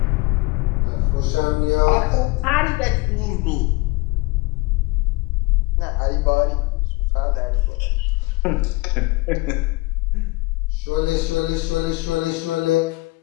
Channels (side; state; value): right; quieter; 23.2 dB